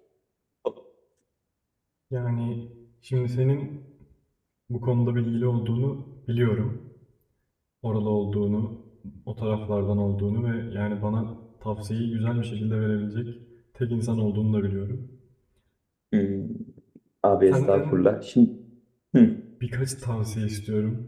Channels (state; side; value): identical; both; correlation 1.00